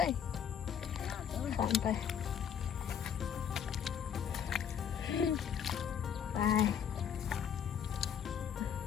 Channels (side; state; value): right; quieter; 8.2 dB